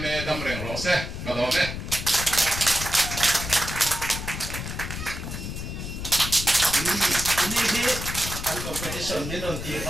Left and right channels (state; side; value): noise; left; rumble, 6 dB below the sound